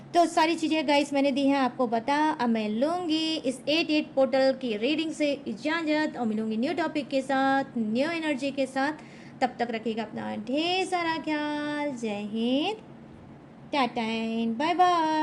तो सारी चीज़ें गाइस मैंने दी हैं आपको बता। अब मैं लूँगी इस 88 पोर्टल की रीडिंग से इजाज़त और मिलूँगी न्यू टॉपिक के साथ, न्यू एनर्जी के साथ। तब तक रखिएगा अपना ढेर सारा ख्याल। जय Hind, tata and bye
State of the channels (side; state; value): both; identical; correlation 1.00